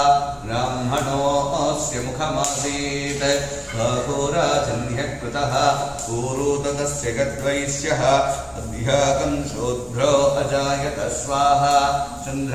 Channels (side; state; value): both; identical; correlation 1.00